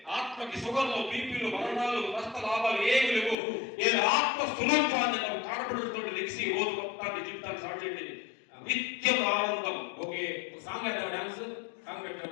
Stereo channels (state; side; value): drops out; right; at 3.4 s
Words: ఆత్మకి సుగర్లు, బీపీలు, మరణాలు, నష్ట లాభాలు ఏమి లేవు. నేను ఆత్మ స్వరూపాన్ని నాకు కాడపడుతూ లెగిసి రోజు మొత్తాన్ని జీవితాన్ని స్టార్ట్ చేయండి. నిత్యం ఆనందం. ఓకే, సాంగ్ పెట్టావు, డాన్స్ సాంగ్